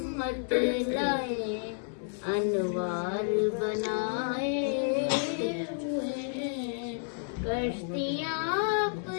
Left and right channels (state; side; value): silent; right; 57 dB below the other